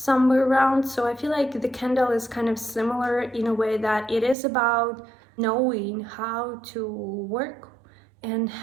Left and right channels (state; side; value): drops out; left; at 4.4 s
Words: around. So I feel like the candle is kind of similar in a way that it is about knowing how to work and